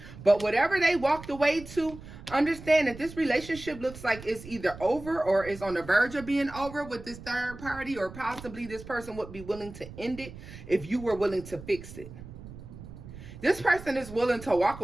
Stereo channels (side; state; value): right; noise; rumble, 15 dB below the sound